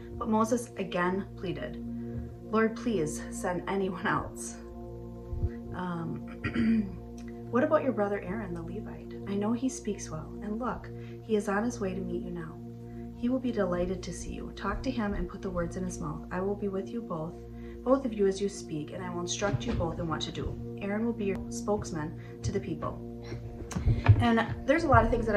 But Moses again pleaded, 'Lord, please send anyone else.' What about your brother Aaron, the Levite? I know he speaks well, and look, he is on his way to meet you now. He will be delighted to see you. Talk to him and put the words in his mouth. I will be with you both of you as you speak, and I will instruct you both in what to do. Aaron will be your spokesman to the people." And there's a lot of things that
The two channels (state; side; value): identical; both; correlation 1.00